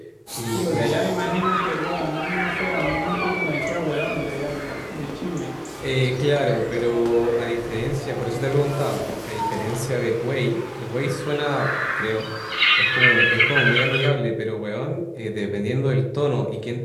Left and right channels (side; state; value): both; identical; correlation 1.00